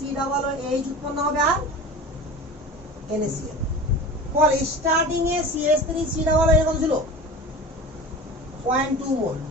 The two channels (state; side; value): normal; both; correlation 0.34